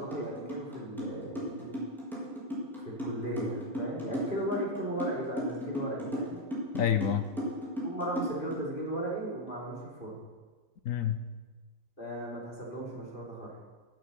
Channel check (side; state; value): both; normal; correlation 0.03